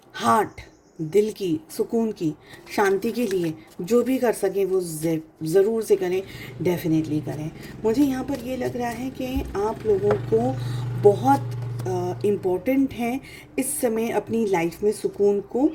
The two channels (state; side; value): identical; both; correlation 1.00